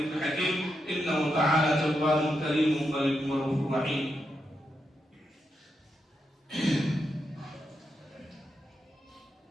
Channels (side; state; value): both; normal; correlation 0.84